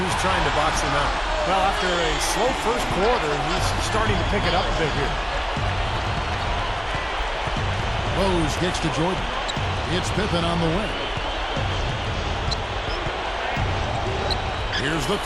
trying to box him out. Well, after a slow first quarter, he's starting to pick it up a bit here. Rose kicks to Jordan. It's Pippen on the wing. Here's the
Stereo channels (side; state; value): both; identical; correlation 1.00